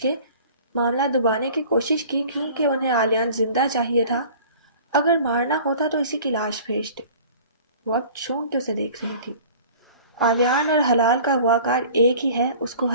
معاملہ دبانے کی کوشش کی، کیونکہ انہیں آلیان زندہ چاہیے تھا۔ اگر مارنا ہوتا تو اسی کی لاش بھیجتے۔ وہ اب چونک کے اسے دیکھ رہی تھی۔ آلیان اور حلال کا اغواکار ایک ہی ہے، اس کو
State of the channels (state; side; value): inverted; both; correlation -0.45